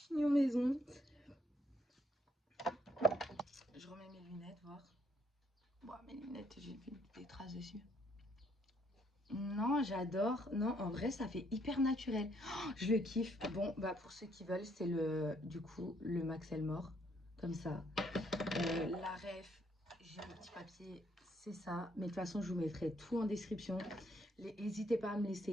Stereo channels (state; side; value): normal; both; correlation 0.70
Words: maison. Je remets mes lunettes, voir. Bon, mes lunettes, j'ai vu des traces dessus. Non, j'adore. Non, en vrai, ça fait hyper naturel. Oh, je le kiffe. Bon, bah pour ceux qui veulent, c'est du coup, le Max Elmore. Comme ça. La ref, j'ai un petit papier, c'est ça. Mais de toute façon, je vous mettrai tout en description. N'hésitez pas à me